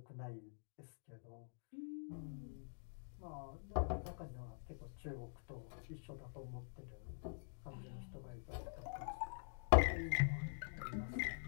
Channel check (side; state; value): right; silent; digital silence